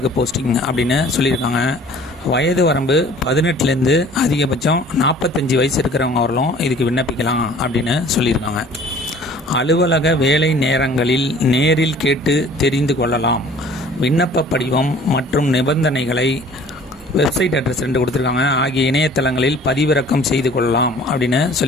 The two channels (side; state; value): both; normal; correlation 0.50